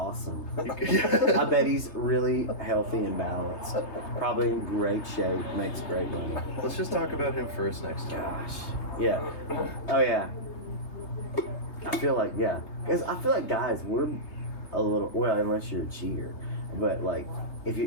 I bet he's really healthy and balanced. Probably in great shape, makes great money. Let's just talk about him first next time. Gosh. Yeah. Oh, yeah. I feel like, yeah. Because I feel like guys, we're a little, well, unless you're a cheater. But, like, if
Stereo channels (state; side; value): late; right; 3.3 ms